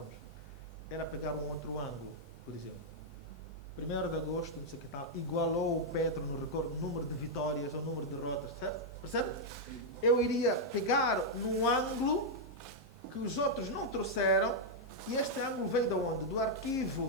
era pegar um outro ângulo, por exemplo. 1º de agosto, não sei o que tal, igualou o Petro no recorde, número de vitórias ou número de derrotas, certo? Percebe? Eu iria pegar num ângulo que os outros não trouxeram, e este ângulo veio de onde? Do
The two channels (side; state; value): both; normal; correlation -0.04